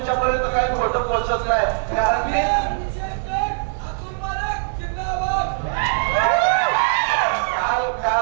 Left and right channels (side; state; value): left; silent; digital silence